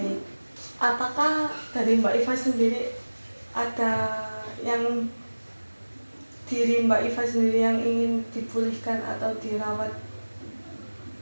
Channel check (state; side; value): inverted; both; correlation -1.00